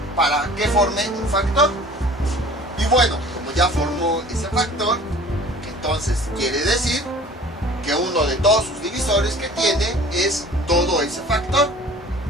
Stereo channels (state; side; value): normal; both; correlation 0.46